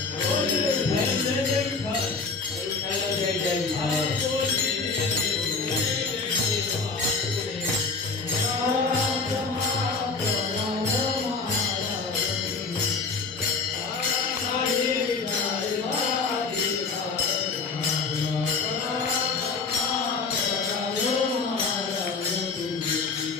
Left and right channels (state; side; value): quieter; right; 4.4 dB